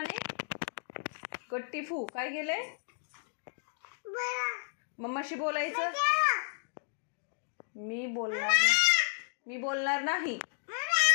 गट्टी फू. काय केलंय? मम्माशी बोलायचं. मी बोलणार नाही.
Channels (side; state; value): right; silent; digital silence